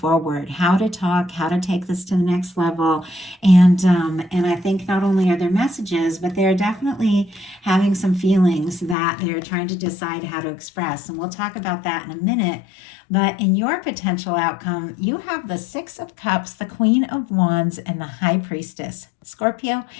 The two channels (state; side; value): drops out; right; at 9.0 s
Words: how to talk, how to take this to the next level. And I think not only are there messages, but they're definitely having some feelings that they're trying to decide how to express. And we'll talk about that in a minute. But in your potential outcome, you have the Six of Cups, the Queen of Wands, and the High Priestess. Scorpio,